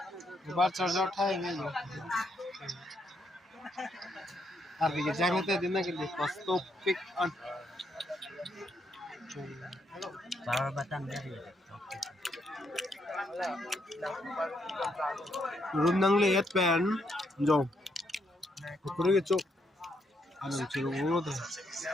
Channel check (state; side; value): normal; both; correlation 0.76